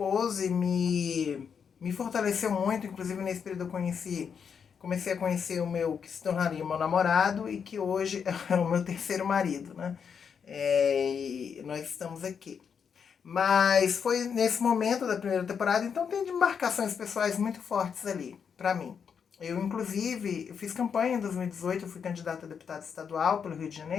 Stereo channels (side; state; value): right; quieter; 6.8 dB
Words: me fortaleceu muito, inclusive nesse período comecei a conhecer o meu, que se tornaria o meu namorado, e que hoje é o meu terceiro marido, né? E nós estamos aqui. Mas foi nesse momento da primeira temporada, então tem demarcações pessoais muito fortes ali, pra mim. Eu, inclusive, eu fiz campanha em 2018, eu fui candidata a deputada estadual pelo Rio de